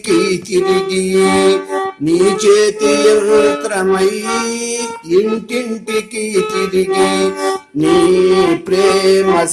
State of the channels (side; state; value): both; identical; correlation 1.00